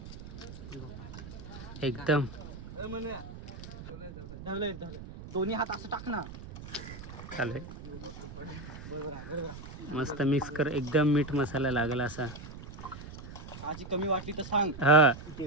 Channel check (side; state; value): right; noise; rumble, 12 dB below the sound